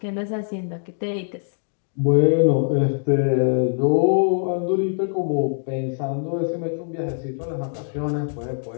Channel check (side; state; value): right; silent; 63 dB below the other